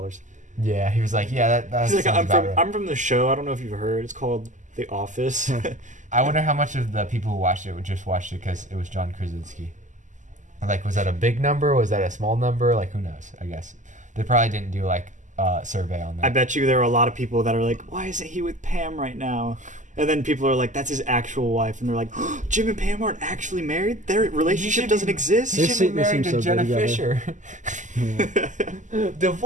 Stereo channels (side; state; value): left; late; 0.36 ms